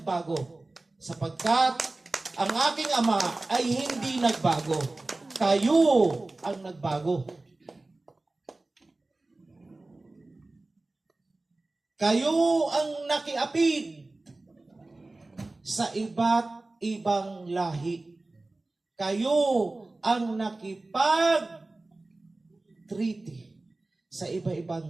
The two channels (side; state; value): left; quieter; 3.0 dB